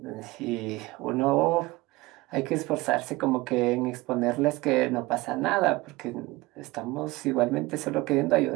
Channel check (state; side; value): quieter; left; 21.0 dB